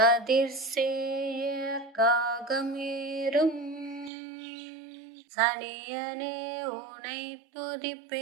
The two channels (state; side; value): drops out; left; at 4.1 s